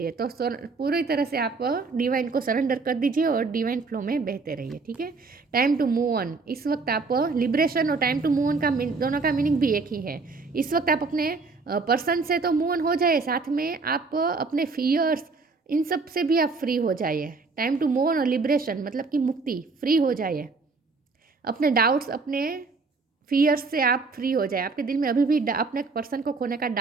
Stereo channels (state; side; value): quieter; left; 4.2 dB